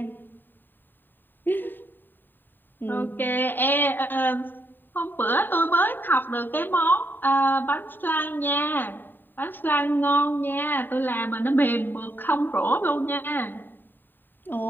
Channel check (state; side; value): late; right; 0.093 ms